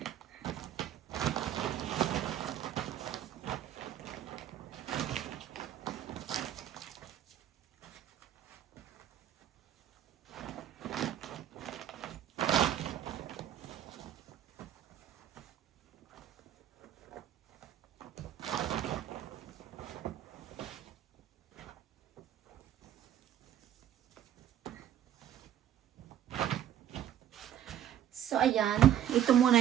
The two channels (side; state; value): left; quieter; 10.9 dB